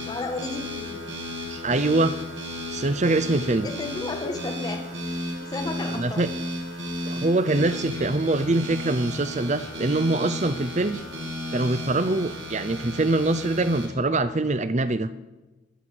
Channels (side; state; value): both; normal; correlation 0.52